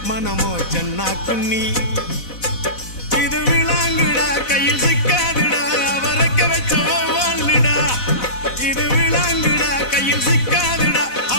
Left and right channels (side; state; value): right; late; 4.0 ms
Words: மனமோ சென்னா குன்னி இது விளாங்குடா கையில் சிக்காதுடா அவரக்க வச்ச வாழ்டா இது விளாங்குடா கையில் சிக்காதுடா